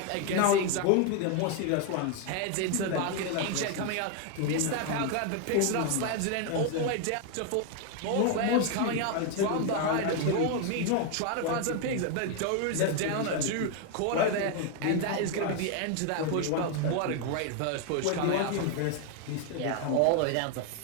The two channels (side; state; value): both; different; correlation 0.01